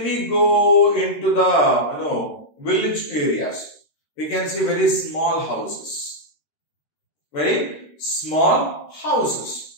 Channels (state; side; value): late; right; 13 ms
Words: we go into the village areas, we can see very small houses. Very small